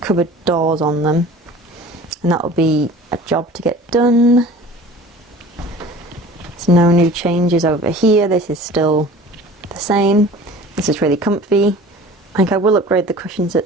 doors on them, and that will be a job to get done. There's no new changes over here. This is still the same. This is really comfy. I think I will upgrade the cushions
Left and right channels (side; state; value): both; normal; correlation 0.43